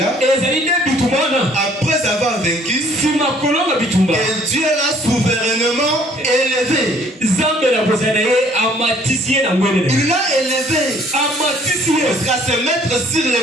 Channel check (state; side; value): normal; both; correlation 0.59